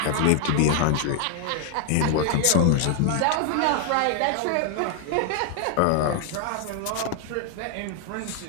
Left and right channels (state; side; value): different; both; correlation 0.00